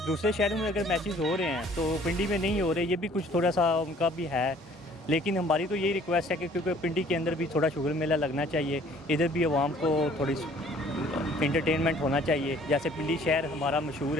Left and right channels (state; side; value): normal; both; correlation 0.56